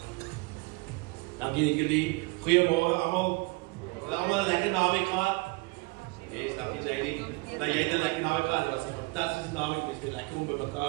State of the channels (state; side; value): quieter; left; 25.4 dB